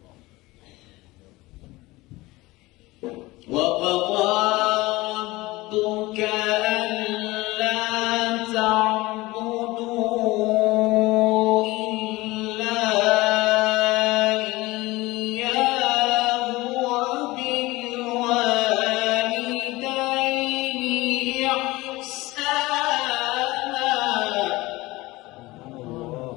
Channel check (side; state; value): right; quieter; 20.4 dB